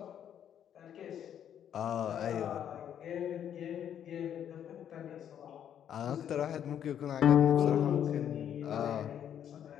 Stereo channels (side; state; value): right; quieter; 9.5 dB